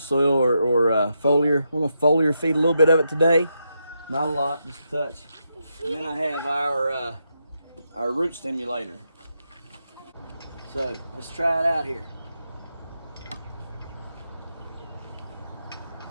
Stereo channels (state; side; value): inverted; both; correlation -0.83